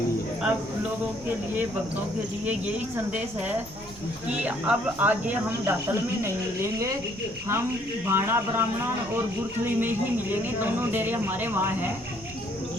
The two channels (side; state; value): both; normal; correlation 0.64